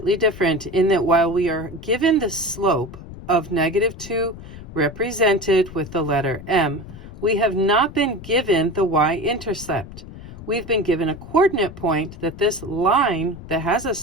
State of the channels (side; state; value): left; noise; rumble, 14 dB below the sound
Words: different in that while we are given the slope of -2 represented with the letter m, we have not been given the y-intercept. We've been given a coordinate point that this line that has a